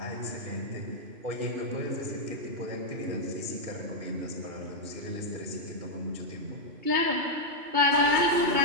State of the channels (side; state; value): left; late; 2.7 ms